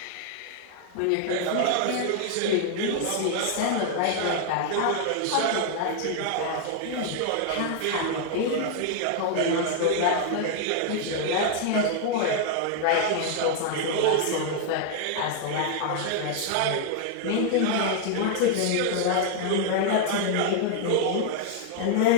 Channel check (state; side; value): different; both; correlation 0.00